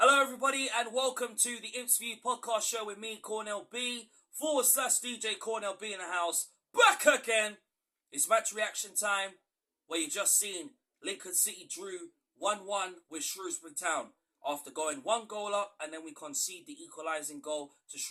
Hello everybody and welcome to the Imps View podcast show with me, Cornell B, /DJ Cornell B in the house, back again. It's match reaction time, where you just seen Lincoln City drew 1-1 with Shrewsbury Town after going 1 goal up, and then we concede the equalising goal to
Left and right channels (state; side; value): identical; both; correlation 1.00